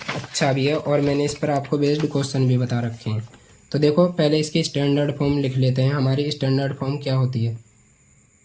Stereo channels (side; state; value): both; identical; correlation 1.00